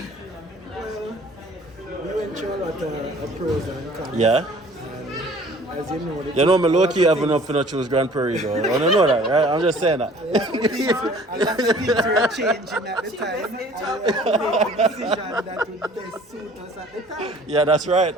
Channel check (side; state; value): both; normal; correlation 0.52